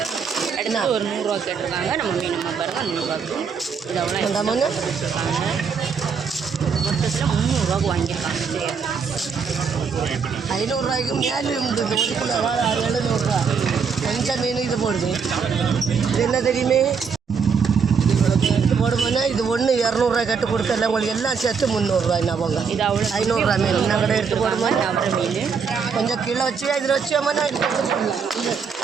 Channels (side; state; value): left; quieter; 6.0 dB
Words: என்ன ஒரு 100 ரூபா கேட்டிருக்காங்க. நம்ம மீன் பாருங்க 100 ரூபாய்க்கு. இது அவ்வளோ வந்தாமங்க மொத்தத்தில் 300 ரூபாய்க்கு வாங்கியிருக்காங்க. சரியா 500 ரூபாய்க்கு மேலே இருந்தது. 1 கிலோ 700 ரூபா. கொஞ்சம் மீன் இது போடுது. இது என்ன தெரியுமே, எடுத்து போடுவோன்னா இது ஒன்று 200 ரூபாய் கட்டு கொடுக்கல. உங்களுக்கு எல்லாம் சேர்த்து 300 ரூபாய். என்ன போங்க, இது அவ்வளோ 500 ரூபா மீன் என்ன கடை எடுத்து போடுமா. அவரை மீன் கொஞ்சம் கிலோ வச்சு இதில் வச்சோம்னா இது